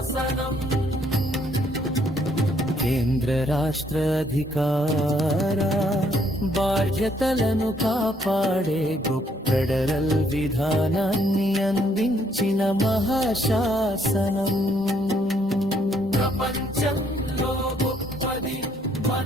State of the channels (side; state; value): both; normal; correlation 0.69